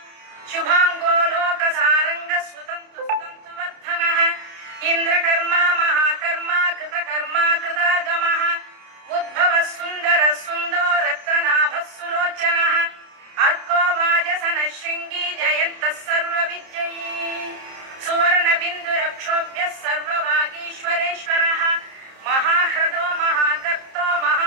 शुभाङ्गो लोकसारङ्गः सुतन्तुवर्धनः इन्द्रकर्मा महाकर्मा कृतकर्मा कृतागमः उद्भवः सुन्दरः सुन्दो रत्ननाभः सुलोचनः अर्को वाजसनः शृङ्गी जयन्तः सर्वविजयी सुवर्णबिन्दुरक्षोभ्यः सर्ववागीश्वरेश्वरः महाह्रदो महागर्तो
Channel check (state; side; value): late; left; 30 ms